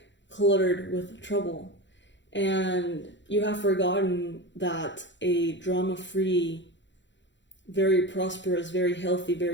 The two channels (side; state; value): right; late; 0.53 ms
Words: cluttered with trouble. And you have forgotten that a drama-free, very prosperous, very healthy,